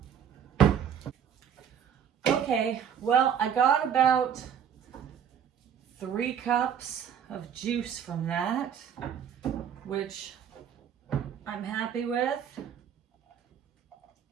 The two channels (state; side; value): quieter; left; 8.4 dB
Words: Okay, well, I got about 3 cups of juice from that, which I'm happy with.